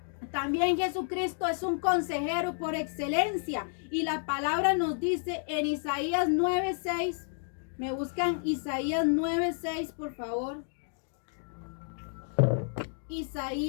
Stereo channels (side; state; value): right; silent; 57 dB below the other